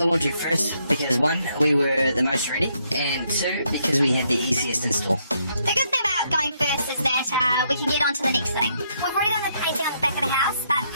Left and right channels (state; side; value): inverted; both; correlation -0.74